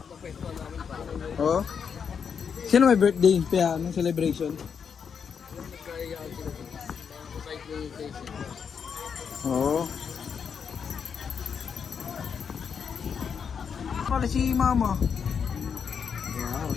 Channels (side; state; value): right; quieter; 6.8 dB